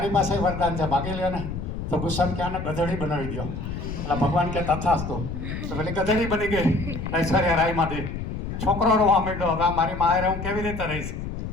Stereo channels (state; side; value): noise; left; rumble, 6 dB below the sound